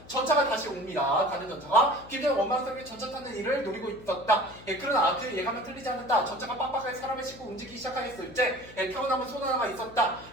전차가 다시 옵니다. 가는 전차가. 김전은 원망스럽게 전차 타는 일을 노리고 있었다. 그러나 그 예감은 틀리지 않았다. 전차가 빡빡하게 사람을 싣고 움직이기 시작하였을 때 타고 남은 손 하나가 있었다.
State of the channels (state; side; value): noise; left; hum, 20 dB below the sound